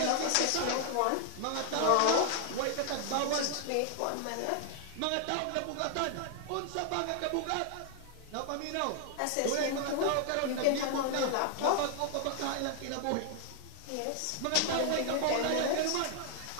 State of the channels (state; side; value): different; both; correlation 0.00